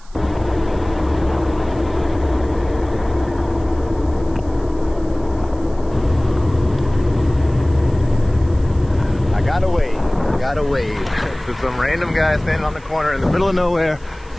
gotta wave to some random guy standing on the corner in the middle of nowhere.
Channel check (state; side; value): noise; right; hiss, 28 dB below the sound